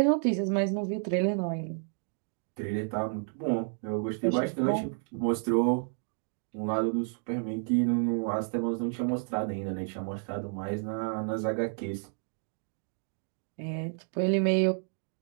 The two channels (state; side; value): silent; left; 57 dB below the other